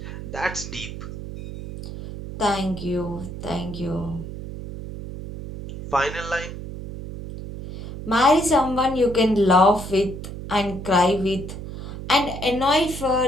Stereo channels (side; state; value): right; noise; hum, 9 dB below the sound